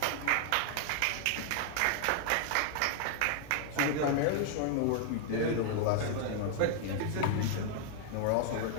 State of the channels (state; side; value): different; both; correlation 0.00